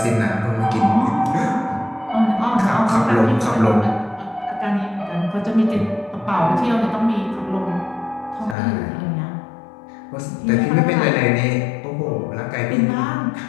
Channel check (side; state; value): right; drops out; at 8.6 s